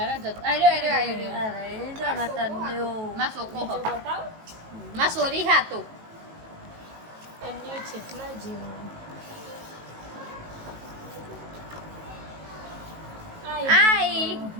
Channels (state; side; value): late; left; 18 ms